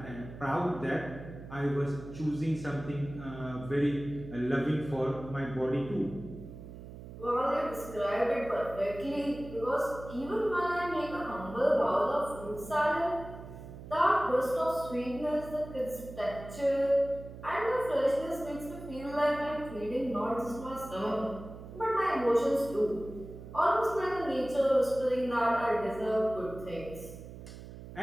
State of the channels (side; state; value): right; noise; hum, 13 dB below the sound